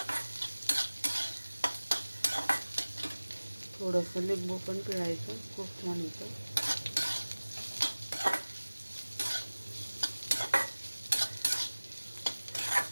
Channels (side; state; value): both; inverted; correlation -1.00